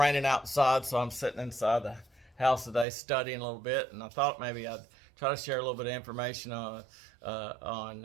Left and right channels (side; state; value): left; drops out; at 2.9 s